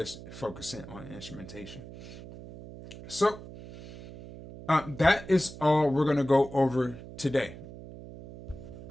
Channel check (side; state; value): right; noise; hum, 14 dB below the sound